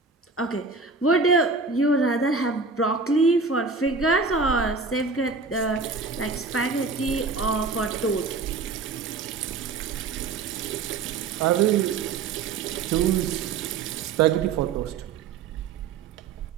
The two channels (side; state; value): left; quieter; 4.5 dB